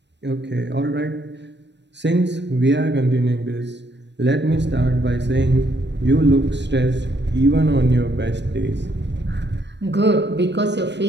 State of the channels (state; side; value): late; left; 0.51 ms